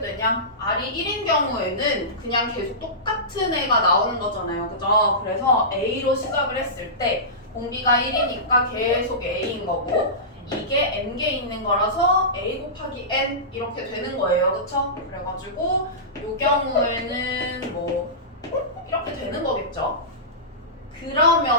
R이 1인 경우에는 그냥 계속 똑같은 애가 나오는 거잖아요. 그죠? 그래서 A로 시작을 했을 때 공비가 1이니까 계속 A인 거고 이게 n개 있는 거라서 a 곱하기 n 이렇게 되는 거예요. 그쵸? 그래가지고 이 경우에는 뭐 이렇게 되는 거겠죠?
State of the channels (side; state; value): both; normal; correlation -0.20